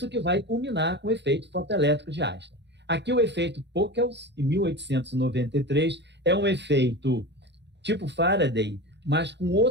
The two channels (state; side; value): late; left; 0.51 ms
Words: que vai culminar com o efeito fotoelétrico de Einstein. Aqui o efeito Pockels, em 1893, é um efeito tipo Faraday, mas com